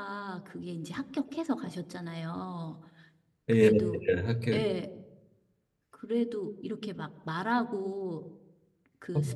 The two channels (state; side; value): identical; both; correlation 1.00